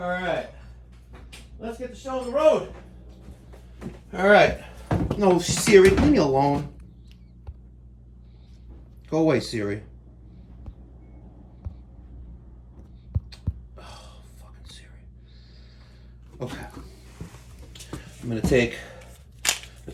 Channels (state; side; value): identical; both; correlation 1.00